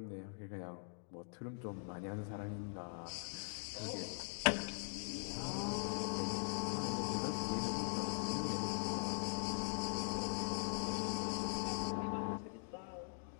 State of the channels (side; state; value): right; silent; digital silence